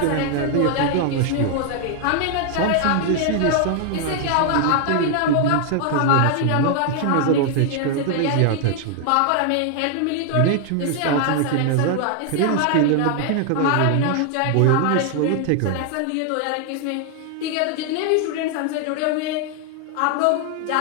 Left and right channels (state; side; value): different; both; correlation 0.00